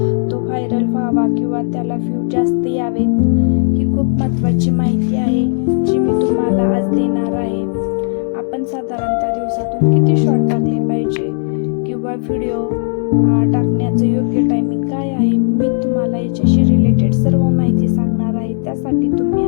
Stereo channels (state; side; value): silent; right; 63 dB below the other